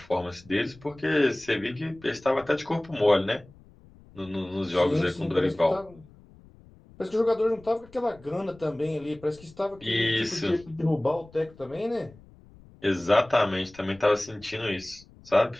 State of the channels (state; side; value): noise; left; rumble, 24 dB below the sound